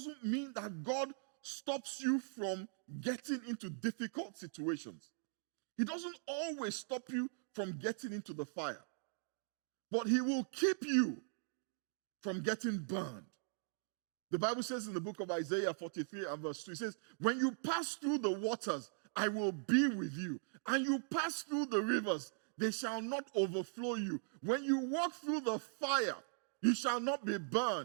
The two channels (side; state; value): left; silent; digital silence